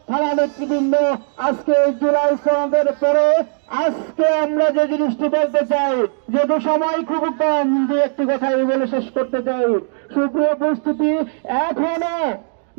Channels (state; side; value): silent; left; 60 dB below the other